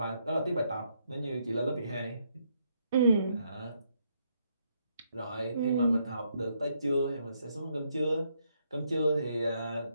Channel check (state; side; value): inverted; both; correlation -0.75